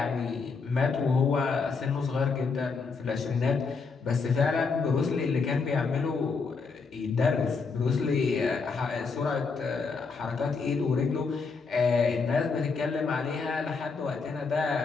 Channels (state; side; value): quieter; right; 4.7 dB